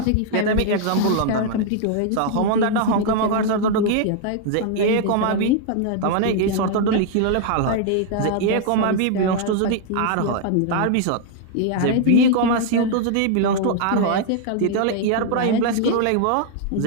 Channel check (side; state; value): both; different; correlation 0.00